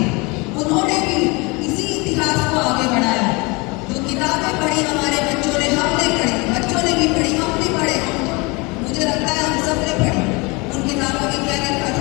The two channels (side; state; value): right; quieter; 27.0 dB